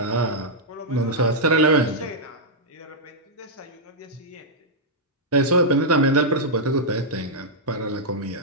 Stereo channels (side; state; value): both; normal; correlation -0.07